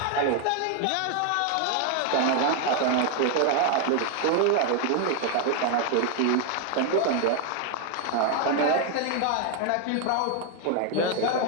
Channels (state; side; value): different; both; correlation 0.01